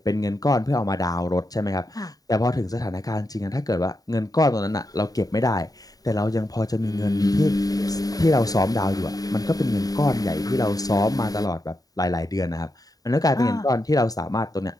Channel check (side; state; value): right; late; 0.18 ms